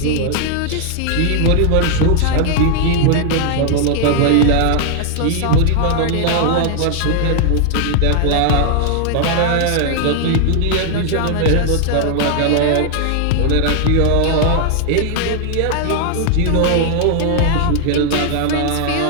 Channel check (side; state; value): both; different; correlation 0.00